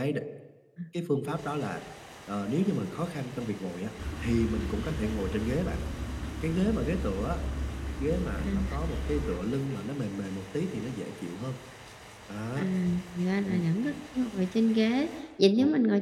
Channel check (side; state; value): both; identical; correlation 1.00